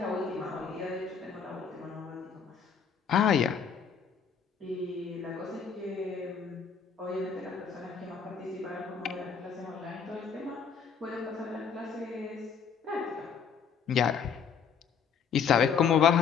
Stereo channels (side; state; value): right; quieter; 6.7 dB